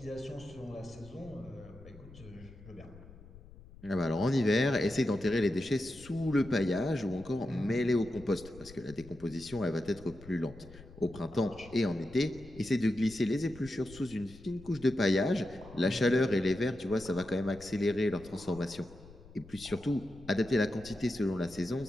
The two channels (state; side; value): noise; left; rumble, 19 dB below the sound